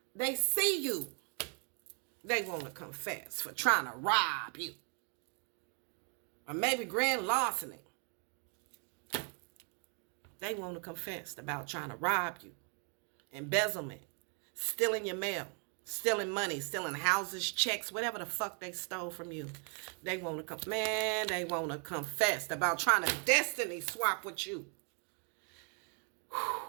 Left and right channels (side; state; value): left; quieter; 39.0 dB